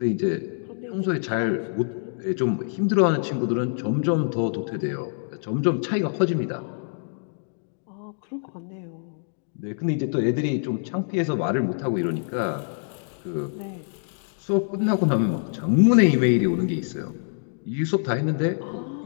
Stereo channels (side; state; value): right; silent; digital silence